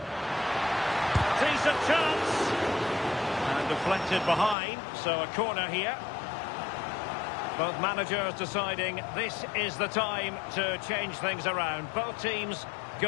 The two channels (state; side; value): drops out; right; at 4.5 s